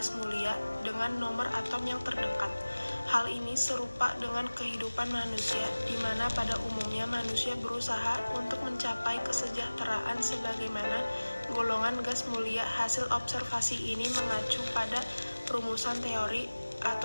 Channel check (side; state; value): both; inverted; correlation -1.00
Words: mulia dengan nomor atom yang terdekat. Hal ini serupa dengan kehidupan manusia, di mana pada umumnya manusia berusaha untuk mencapai kesejahteraan sebagaimana golongan gas mulia. Hasil observasi ini mengacu pada rumusan teori